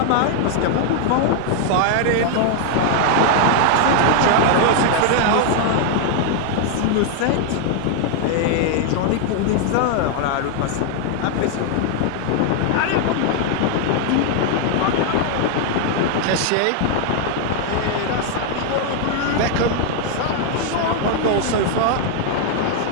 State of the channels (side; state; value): both; different; correlation 0.00